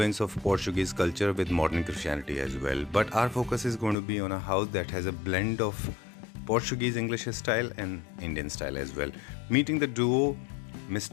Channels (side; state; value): right; drops out; at 4.0 s